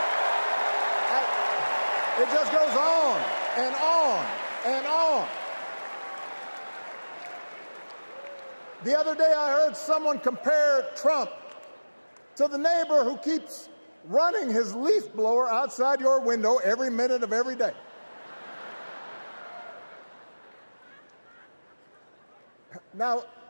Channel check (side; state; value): both; inverted; correlation -1.00